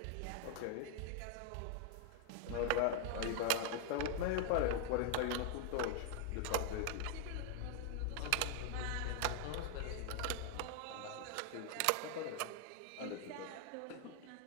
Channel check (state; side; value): different; both; correlation 0.00